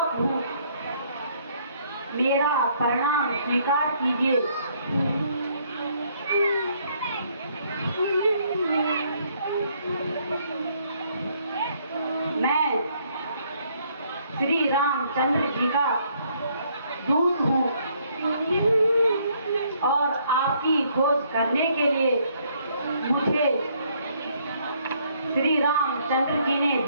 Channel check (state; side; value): inverted; both; correlation -0.67